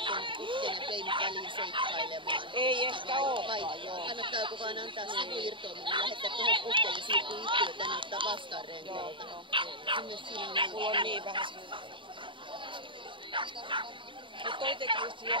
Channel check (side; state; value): left; late; 0.24 ms